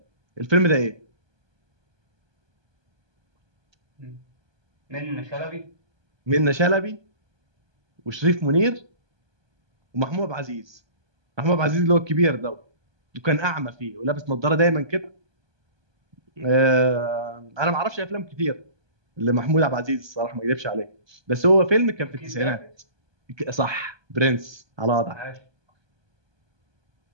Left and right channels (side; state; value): left; late; 1.2 ms